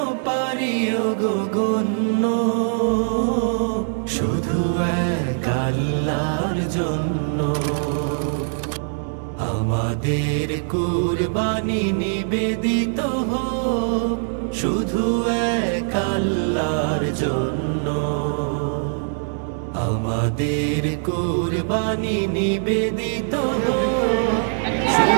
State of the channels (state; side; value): silent; left; digital silence